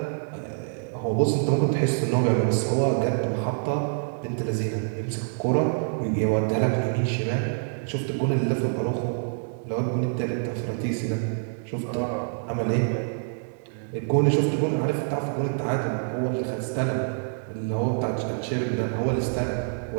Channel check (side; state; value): left; silent; digital silence